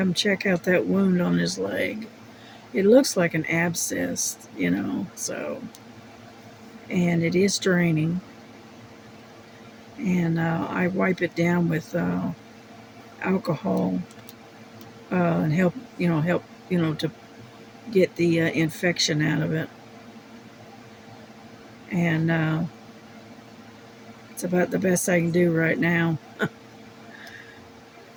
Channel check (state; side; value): identical; both; correlation 1.00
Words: him check out that wound on his leg. It looks like an abscess, so, and it is draining. And I wipe it down with alcohol and help, to get the infection out of it. And it's about the best I can do right now.